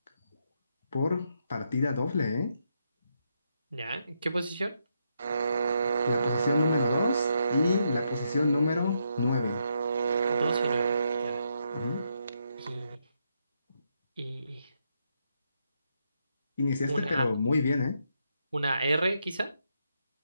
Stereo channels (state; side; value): inverted; both; correlation -0.79